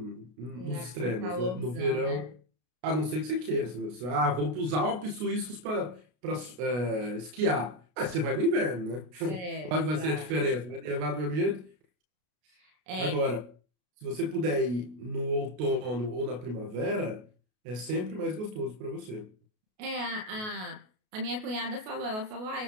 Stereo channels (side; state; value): left; late; 33 ms